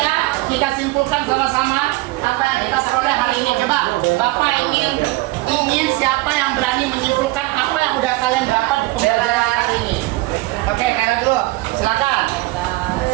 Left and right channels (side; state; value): left; quieter; 20.7 dB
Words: kita simpulkan sama-sama apa yang kita peroleh hari ini. Coba, Bapak ingin siapa yang berani menyimpulkan apa yang udah kalian dapat di pembelajaran hari ini? Oke, kalian dulu, silakan.